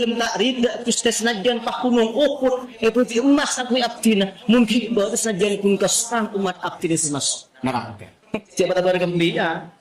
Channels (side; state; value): both; identical; correlation 1.00